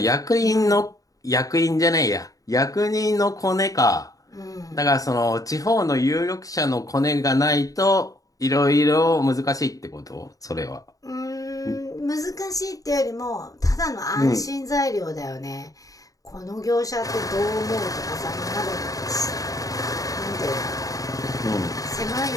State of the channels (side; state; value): right; late; 0.17 ms